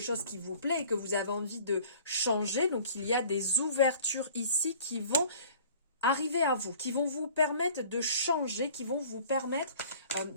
qui vous plaît et que vous avez envie de changer. Donc il y a des ouvertures ici qui vont arriver à vous, qui vont vous permettre de changer, qui vont vous permettre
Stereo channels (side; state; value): both; inverted; correlation -0.48